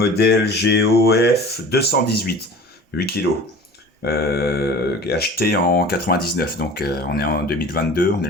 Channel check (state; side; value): normal; both; correlation 0.41